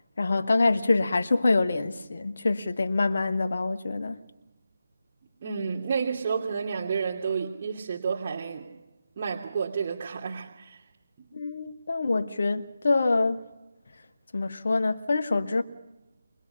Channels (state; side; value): inverted; both; correlation -0.91